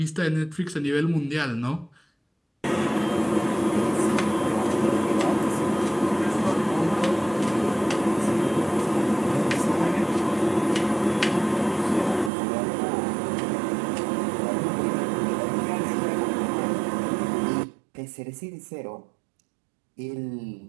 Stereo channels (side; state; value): left; drops out; at 12.3 s